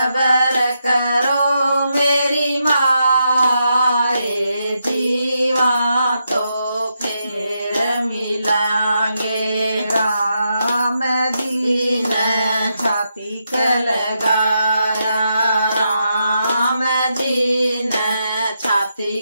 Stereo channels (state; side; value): inverted; both; correlation -0.83